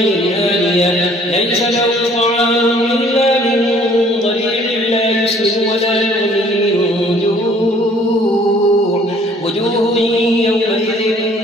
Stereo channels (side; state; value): both; normal; correlation 0.57